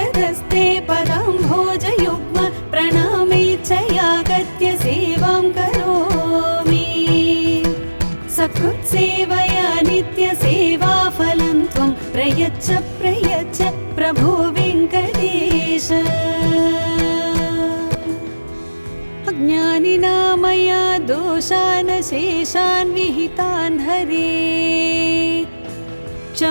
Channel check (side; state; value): both; inverted; correlation -1.00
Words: पदाम्भोजयुग्म प्रणामेच्छयागत्य सेवां करोमि सकृत्सेवया नित्यसेवाफलं त्वं प्रयच्छ प्रयच्छ प्रभो वेङ्कटेश अज्ञानिना मया दोषान् शेषान् विहितान् हरे